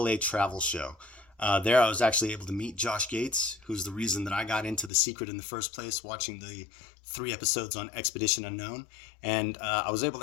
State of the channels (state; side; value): drops out; right; at 4.9 s